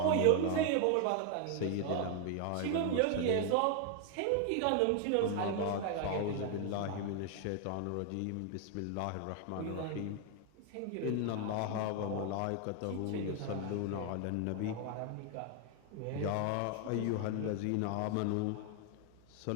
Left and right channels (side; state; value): both; different; correlation 0.01